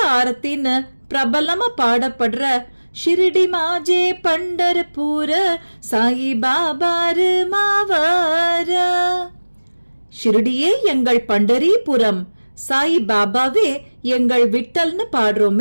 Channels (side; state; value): both; inverted; correlation -1.00